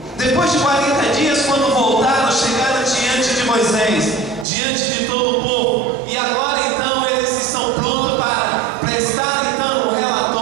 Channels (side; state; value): left; drops out; at 4.5 s